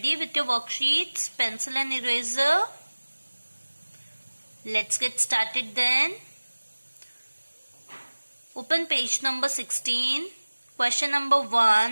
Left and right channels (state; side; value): inverted; both; correlation -1.00